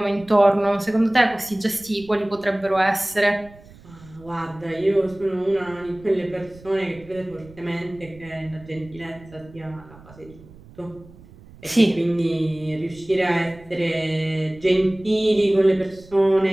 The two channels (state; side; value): noise; right; rumble, 22 dB below the sound